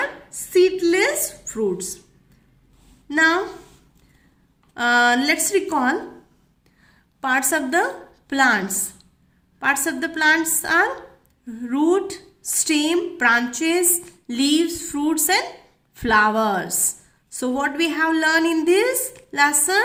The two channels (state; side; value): identical; both; correlation 1.00